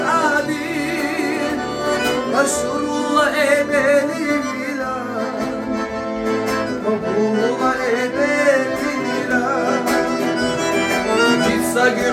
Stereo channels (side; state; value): both; identical; correlation 1.00